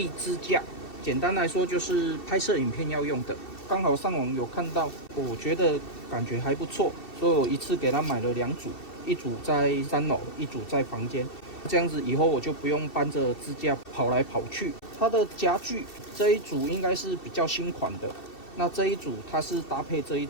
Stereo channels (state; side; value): late; right; 2.7 ms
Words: 支架，簡單來說就是拍攝影片要用的。剛好上網有看到，我覺得感覺還不錯，所以我一次給他買了2組，一組在3樓，一組在房間。這樣子以後我就不用搬着支架跑來跑去。它的夾具這一組應該是比較新款的。那這一組它是搭配這一